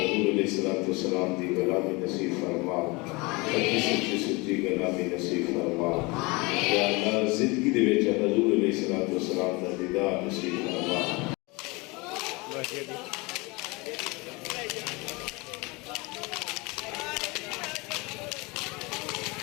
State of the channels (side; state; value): right; quieter; 25.9 dB